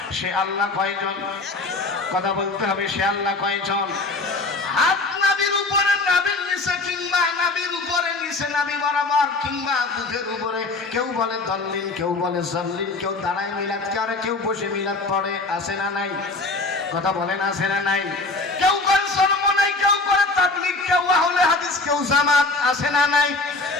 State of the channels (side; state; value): right; quieter; 3.3 dB